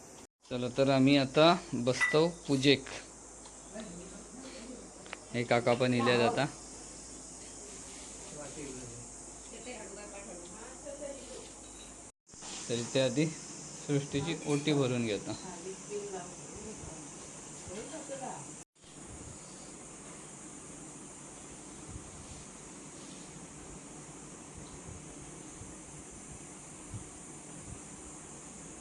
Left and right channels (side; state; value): both; identical; correlation 1.00